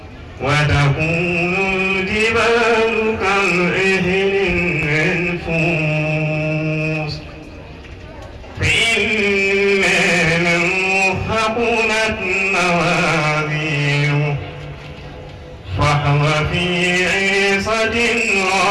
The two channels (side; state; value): both; identical; correlation 1.00